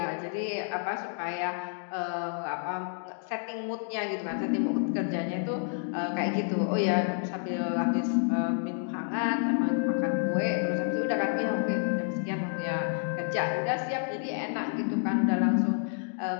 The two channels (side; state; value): right; silent; 58 dB below the other